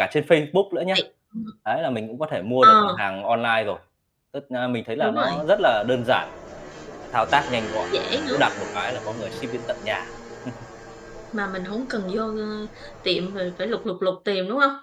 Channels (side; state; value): both; identical; correlation 1.00